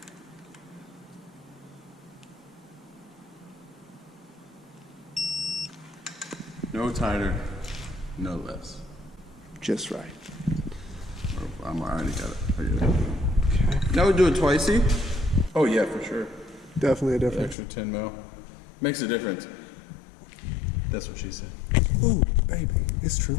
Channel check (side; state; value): right; drops out; at 17.6 s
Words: No tighter, no less. Just right. Oh, I already got it. Okay. Now we do it twicey. Oh yeah, for sure. Definitely a difference. Extra 10 mil. Makes a difference. That's what she said. Oh, baby, it's true.